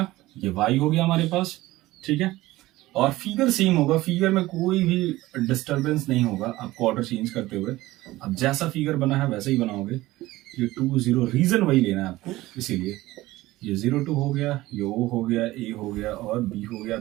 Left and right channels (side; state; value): left; quieter; 17.8 dB